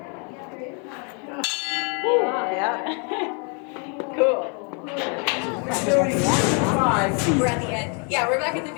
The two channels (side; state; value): right; quieter; 37.1 dB